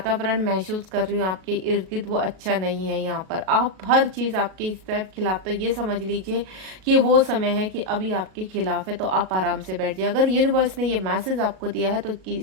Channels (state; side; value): late; left; 37 ms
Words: महसूस कर रही हूँ आपके इर्द गिर्द, वो अच्छा नहीं है यहाँ पर। आप हर चीज़ आपके इस तरफ खिलाफ, तो ये समझ लीजिए कि वो समय है कि अभी आपके खिलाफ है, तो आप आराम से बैठ जाइए। अगर यूनिवर्स ने ये मैसेज आपको दिया है तो